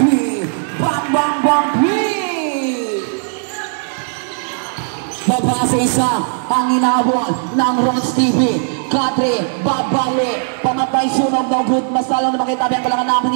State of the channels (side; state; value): left; silent; digital silence